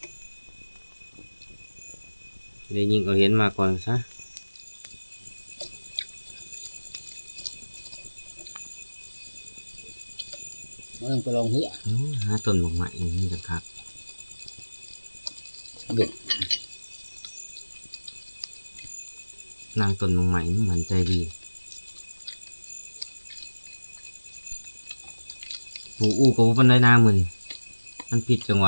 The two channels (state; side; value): inverted; both; correlation -1.00